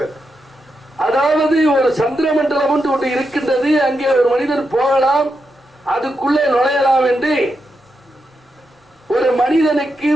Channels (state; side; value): normal; both; correlation 0.85